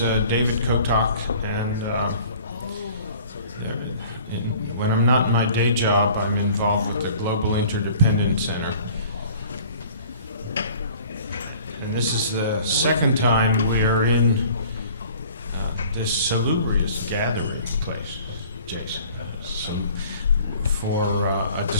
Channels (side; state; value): both; inverted; correlation -0.50